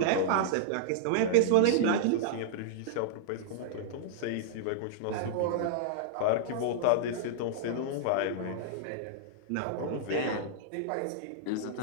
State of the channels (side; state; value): both; different; correlation -0.02